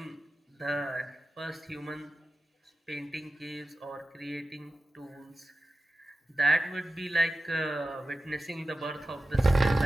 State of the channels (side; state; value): both; normal; correlation 0.94